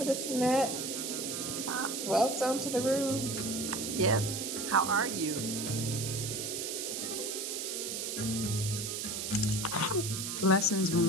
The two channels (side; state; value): right; noise; hiss, 4 dB below the sound